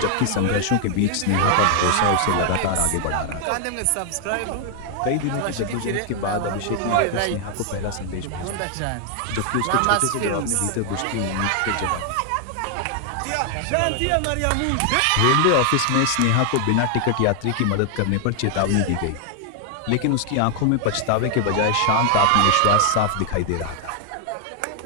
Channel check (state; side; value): different; both; correlation 0.00